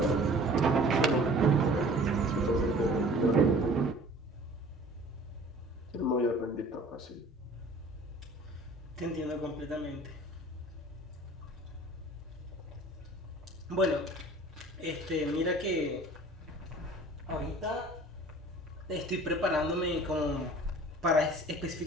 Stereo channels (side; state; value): both; normal; correlation 0.48